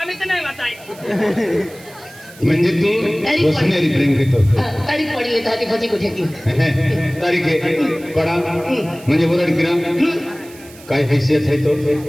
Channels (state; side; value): noise; right; hiss, 21 dB below the sound